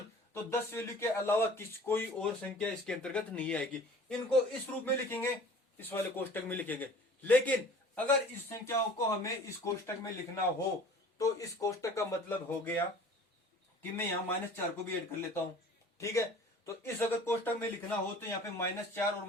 तो 10 वैल्यू के अलावा कोई और संख्या इसके अंतर्गत नहीं आएगी। इनको इस रूप में लिखेंगे, इस वाले कोष्टक में लिखेंगे। लेकिन अगर इस संख्याओं को हमें इस कोष्टक में लिखना हो तो इस कोष्टक का मतलब हो गया कि मैं यहाँ -4 को भी ऐड कर लेता हूं। ठीक है, तो इस अगर कोष्टक में लिखना हो तो यहाँ पे -4 और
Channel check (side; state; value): both; normal; correlation 0.46